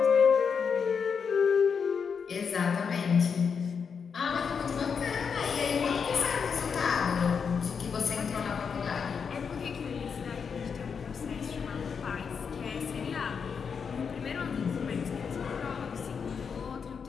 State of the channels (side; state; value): right; quieter; 6.2 dB